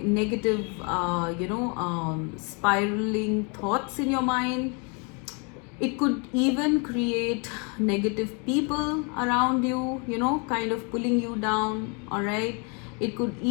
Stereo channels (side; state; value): right; quieter; 34.2 dB